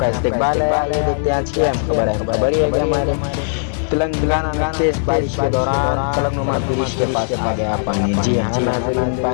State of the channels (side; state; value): right; silent; digital silence